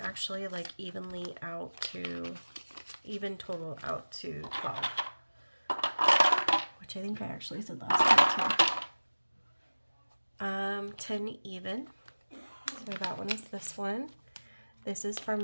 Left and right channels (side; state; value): both; inverted; correlation -1.00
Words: like even total out to 12. Which I think I actually said last time too. 10 even. So that one is this one. This is